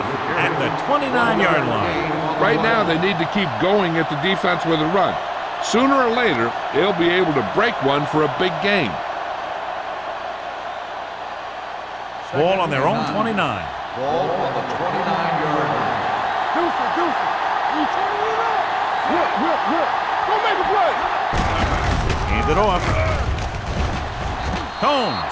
at the 29-yard line. Right now, they need to keep going at the defense with a run. Sooner or later, they'll be able to break one for a big gain. Ball on their own 29. Ball on the 29-yard line. Deuce. You turning it up. Whip. Go make a play. Hand it off.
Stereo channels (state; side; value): identical; both; correlation 1.00